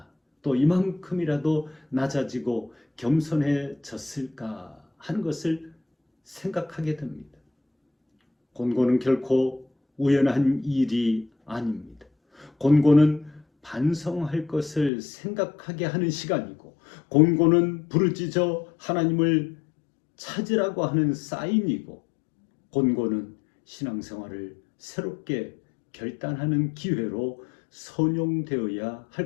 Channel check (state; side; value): drops out; right; at 14.9 s